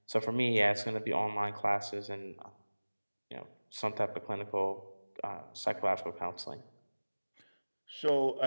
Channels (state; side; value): inverted; both; correlation -1.00